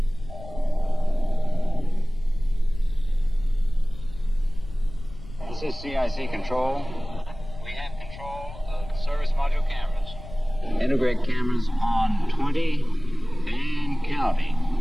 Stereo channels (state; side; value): noise; left; rumble, 14 dB below the sound